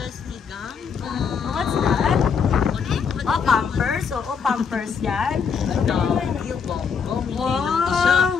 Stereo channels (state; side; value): quieter; right; 6.2 dB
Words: ni Gangga. What's that? Oh, Pampers. Oo, Pampers yan. Yung bongo. Hindi lang to siya.